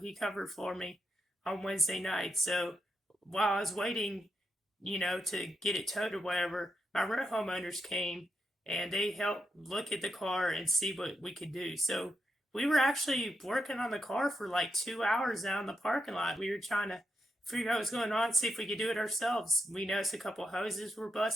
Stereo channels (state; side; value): normal; both; correlation 0.83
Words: He covered for me on Wednesday night. So while I was waiting, to get it towed or whatever, my rent homeowners came and they helped look at the car and see what we could do. So we were actually working on the car for like 2 hours down in the parking lot. We were trying to figure out what's going on, see if we could do it ourselves. We noticed a couple hoses were